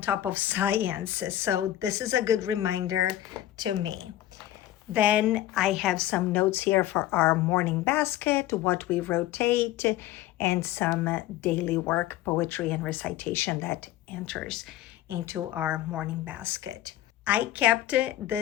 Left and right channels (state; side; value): quieter; right; 13.8 dB